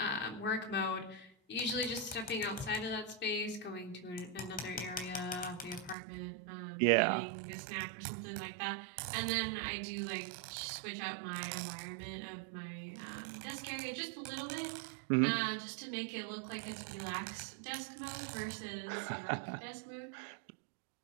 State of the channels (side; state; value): left; drops out; at 6.0 s